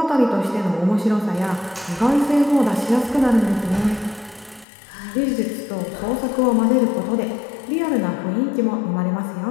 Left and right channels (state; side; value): drops out; right; at 4.7 s